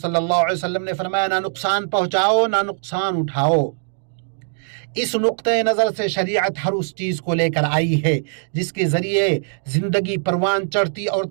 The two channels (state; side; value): silent; left; digital silence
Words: اللہ علیہ وسلم نے فرمایا نہ نقصان پہنچاؤ نہ نقصان اٹھاؤ۔ اس نقطۂ نظر سے شریعت ہر اس چیز کو لے کر آئی ہے جس کے ذریعے زندگی پروان چڑھتی اور